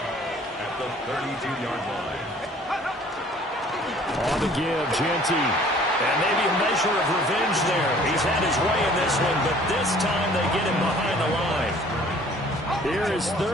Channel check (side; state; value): both; normal; correlation 0.54